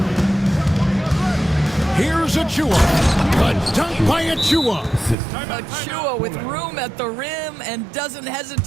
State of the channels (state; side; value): drops out; left; at 5.2 s